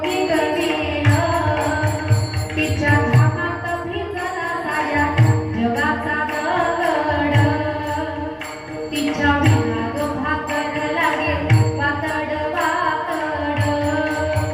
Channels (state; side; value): identical; both; correlation 1.00